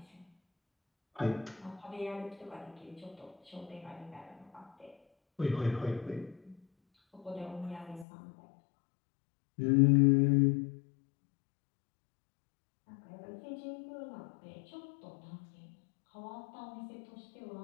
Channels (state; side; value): drops out; right; at 8.1 s